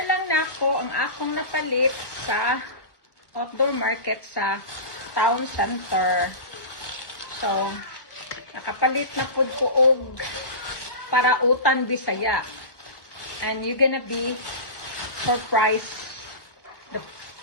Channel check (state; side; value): late; right; 1.2 ms